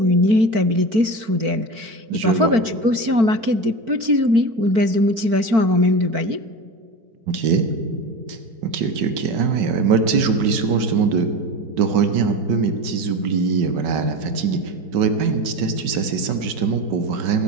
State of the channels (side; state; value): left; late; 5.3 ms